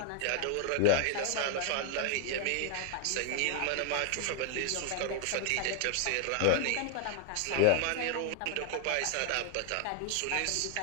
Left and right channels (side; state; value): both; different; correlation 0.00